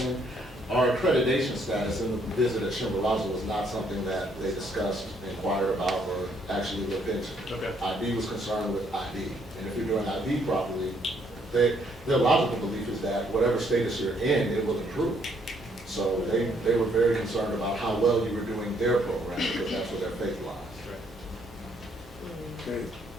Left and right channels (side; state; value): both; normal; correlation 0.69